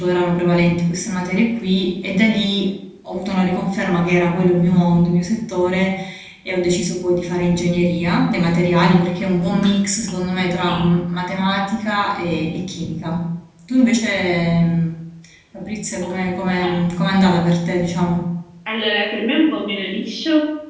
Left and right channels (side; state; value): both; identical; correlation 1.00